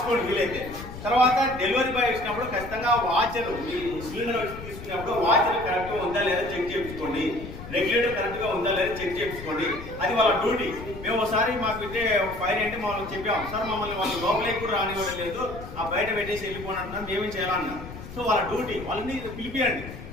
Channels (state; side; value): noise; left; rumble, 12 dB below the sound